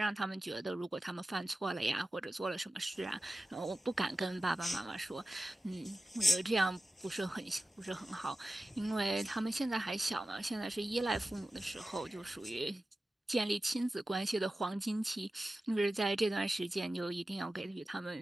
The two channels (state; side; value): normal; both; correlation 0.94